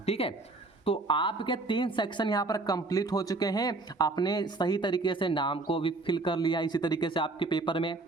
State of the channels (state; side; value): quieter; left; 3.3 dB